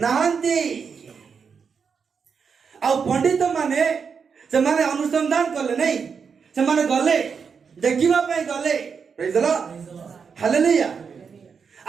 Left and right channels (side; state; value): left; quieter; 6.1 dB